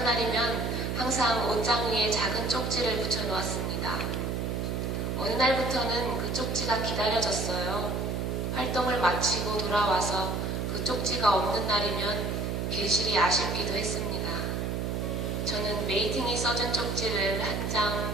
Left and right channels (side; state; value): right; noise; hum, 1 dB below the sound